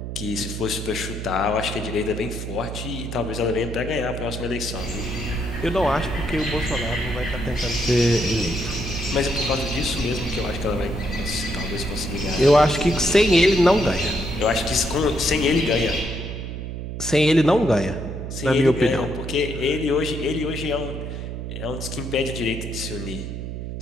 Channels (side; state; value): right; noise; hum, 6 dB below the sound